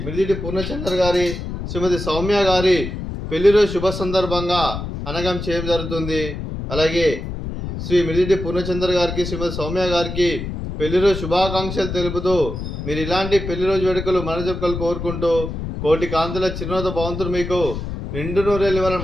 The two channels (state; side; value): noise; left; rumble, 6 dB below the sound